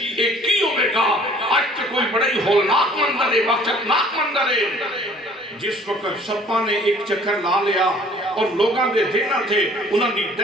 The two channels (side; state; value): both; normal; correlation 0.53